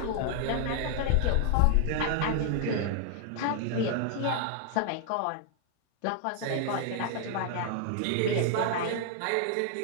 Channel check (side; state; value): both; different; correlation 0.00